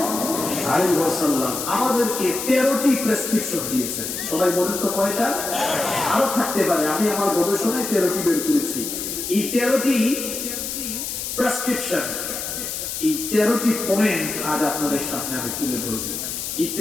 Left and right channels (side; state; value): left; noise; hiss, 5 dB below the sound